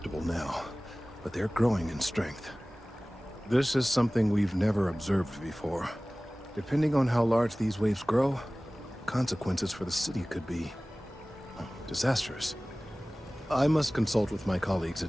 now, but they're growing in strength. This is something we've never observed before. Depending on how large these waves grow, consequences for the city could be disastrous. I must consult with my colleagues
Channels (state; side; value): normal; both; correlation 0.98